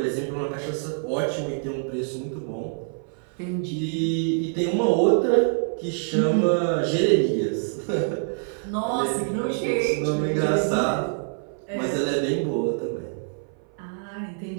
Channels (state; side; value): silent; left; 57 dB below the other